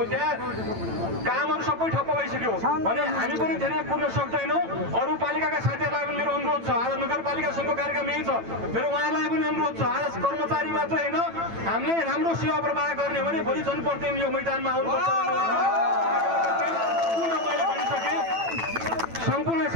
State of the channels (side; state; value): left; late; 9.0 ms